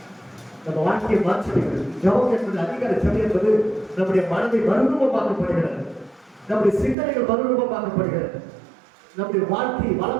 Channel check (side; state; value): left; drops out; at 7.0 s